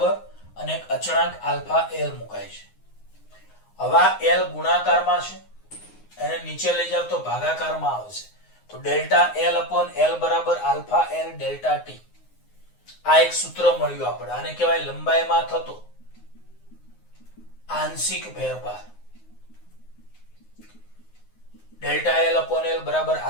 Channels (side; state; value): right; late; 9.6 ms